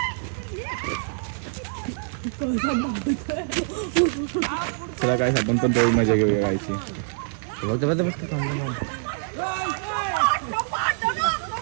चला गाईस आपण पण तेवढी मजा घेऊया गायची. बघ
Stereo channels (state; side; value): silent; left; digital silence